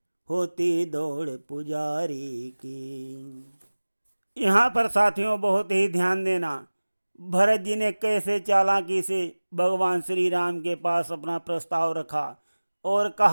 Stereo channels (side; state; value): both; inverted; correlation -1.00